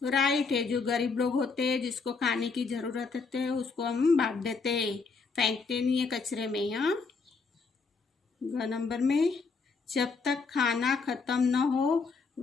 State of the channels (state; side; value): quieter; right; 4.6 dB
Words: तो राइट है। जो गरीब लोग होते हैं जिसको खाने की जरूरत होती है उसको हम बांट देते हैं, फेंकते नहीं है कचरे में। यहाँ ग नंबर में, जब तक खाना खत्म न हो